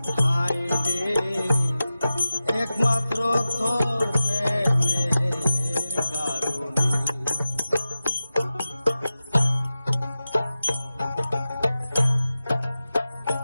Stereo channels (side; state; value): both; inverted; correlation -0.94